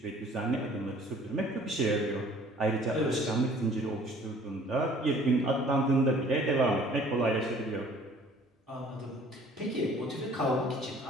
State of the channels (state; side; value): normal; both; correlation 0.53